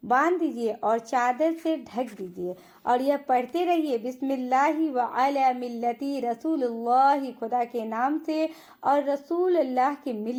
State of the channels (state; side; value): identical; both; correlation 1.00